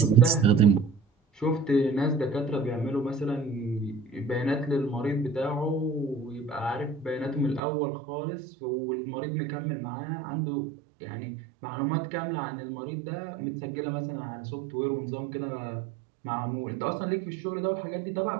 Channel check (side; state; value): left; drops out; at 7.6 s